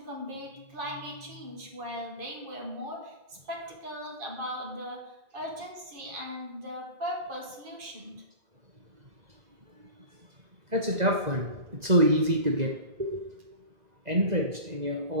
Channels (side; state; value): left; late; 2.0 ms